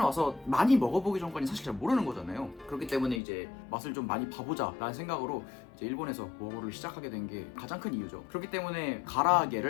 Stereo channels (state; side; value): drops out; right; at 3.2 s